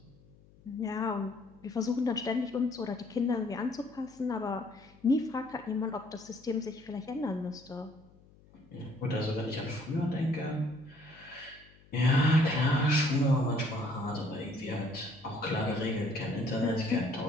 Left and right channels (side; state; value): left; noise; hum, 26 dB below the sound